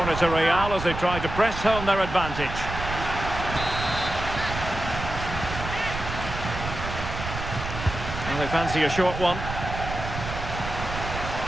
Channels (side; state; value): right; noise; rumble, 7 dB below the sound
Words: to Real as they try to press home their advantage. Well, they fancy a short one.